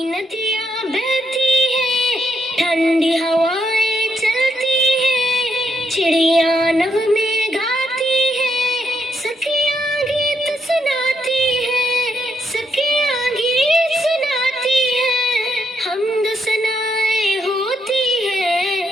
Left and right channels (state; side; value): normal; both; correlation 0.77